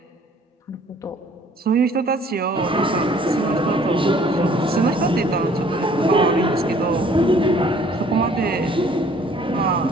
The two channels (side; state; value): both; normal; correlation 0.57